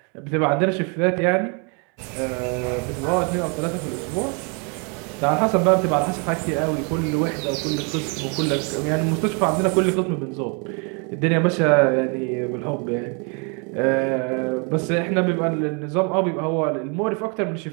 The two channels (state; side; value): quieter; left; 35.2 dB